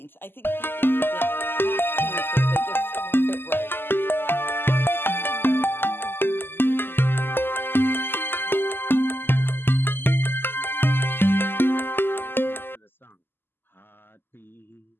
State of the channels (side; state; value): right; late; 0.10 ms